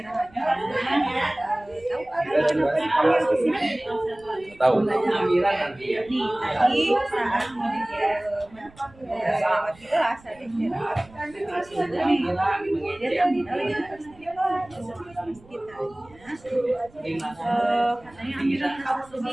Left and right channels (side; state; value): right; noise; rumble, 26 dB below the sound